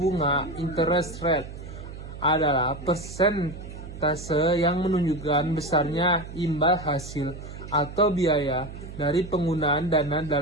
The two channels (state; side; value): noise; right; hum, 12 dB below the sound